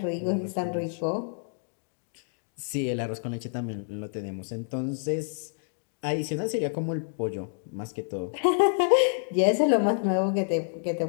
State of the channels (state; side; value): silent; right; digital silence